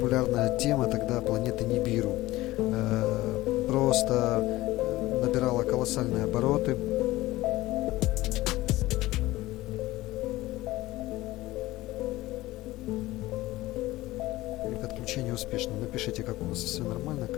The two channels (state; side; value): quieter; right; 17.8 dB